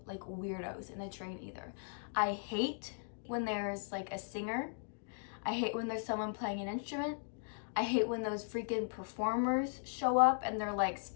like weirdos in the train either. I hate when there's like a singer. I hate when there's someone playing an instrument. I hate when those freaking performers show up and they're like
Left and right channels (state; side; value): silent; right; digital silence